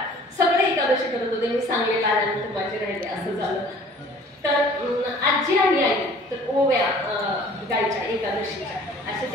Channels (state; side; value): normal; both; correlation 0.51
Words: सगळे एकादशी करत होते, मी सांगलेलं आल्यानंतर माझे राहिले असं झालं. तर आजी आणि आई तर ओव्या गायच्या एकादशीच्या,